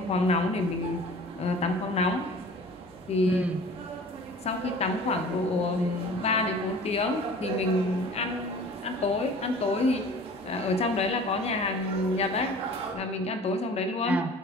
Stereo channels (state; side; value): normal; both; correlation 0.44